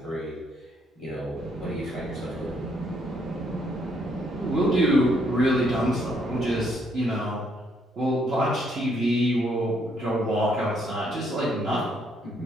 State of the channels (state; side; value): normal; both; correlation 0.71